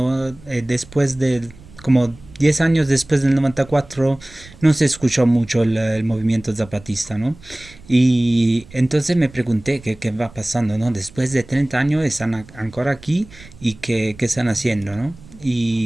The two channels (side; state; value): right; noise; rumble, 22 dB below the sound